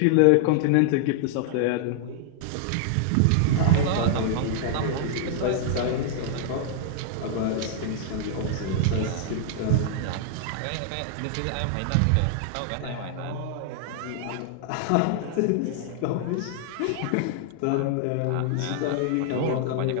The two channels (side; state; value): both; different; correlation -0.01